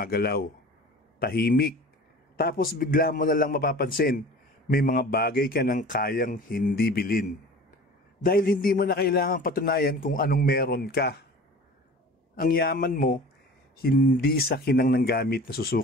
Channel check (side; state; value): both; normal; correlation 0.40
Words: Tahimik. Tapos bigla mo na lang mapapansin, may mga bagay ka nang kayang hindi bilhin. Dahil hindi mo na kailangang patunayan kung anong meron ka. Ang yaman mo, hindi sa kinang ng gamit na